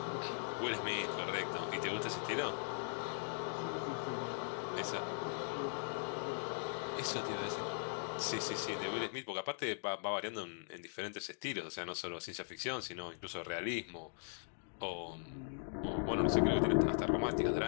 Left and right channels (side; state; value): right; silent; digital silence